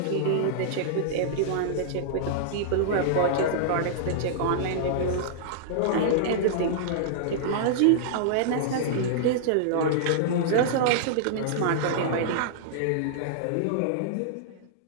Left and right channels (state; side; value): different; both; correlation -0.02